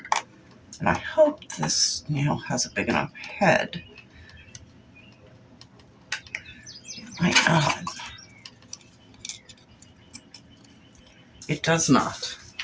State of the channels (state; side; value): identical; both; correlation 1.00